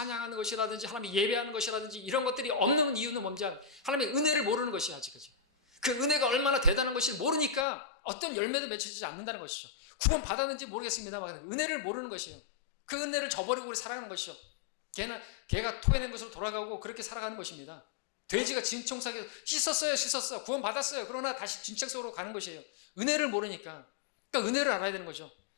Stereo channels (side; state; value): right; drops out; at 7.7 s